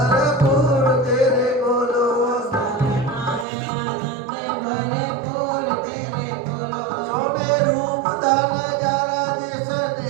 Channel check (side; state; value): left; drops out; at 3.5 s